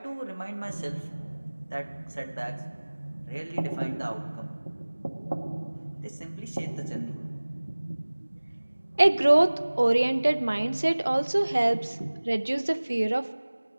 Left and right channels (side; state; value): both; inverted; correlation -1.00